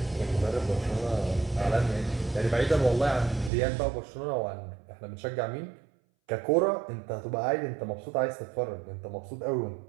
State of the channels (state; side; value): drops out; left; at 3.5 s